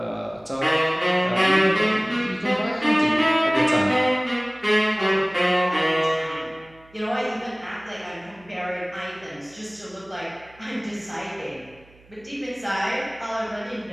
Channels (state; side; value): noise; right; hum, 27 dB below the sound